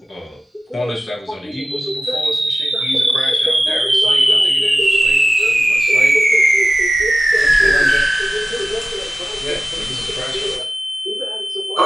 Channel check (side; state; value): both; normal; correlation 0.95